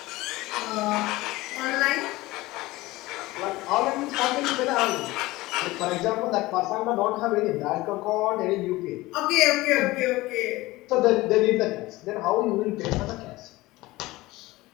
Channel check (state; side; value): quieter; right; 19.5 dB